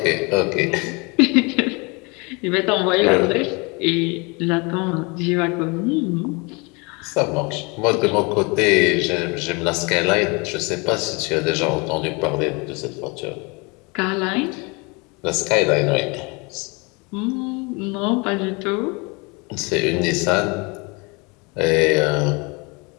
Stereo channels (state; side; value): quieter; right; 28.9 dB